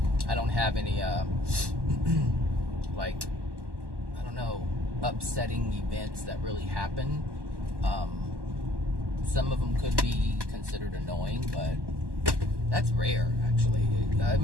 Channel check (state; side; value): late; left; 1.1 ms